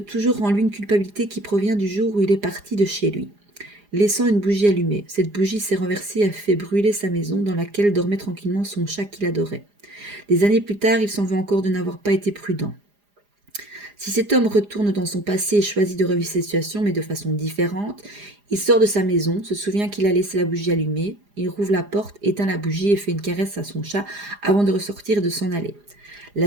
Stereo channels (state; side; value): late; left; 4.9 ms